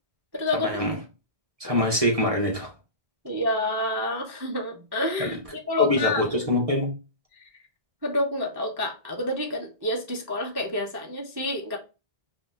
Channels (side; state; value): left; late; 1.6 ms